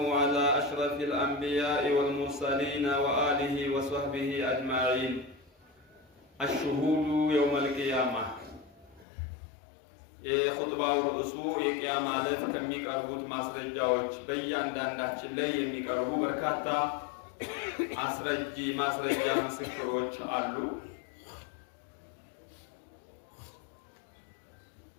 على أشرف الأنبياء والمرسلين وآله وصحبه أجمعين. الشهود يوم القيامة የኹጥባው ርዕሱ የቂያማ ዕለት ከሚቀርቡት ማስረጃዎች በእያንዳንዳችን ላይ የሚቀርቡ በርካታ ማስረጃ ምስክሮች አሉ።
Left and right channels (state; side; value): drops out; right; at 9.1 s